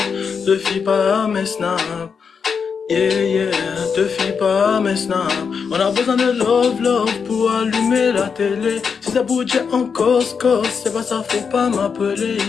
Te fie pas à mes snaps, yeah, yeah, te fie pas à mes snaps. On a besoin de love, love pour allumer la télé. Si ça bouge en cause, c'est pas ça, faut pas m'appeler,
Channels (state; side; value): quieter; right; 6.1 dB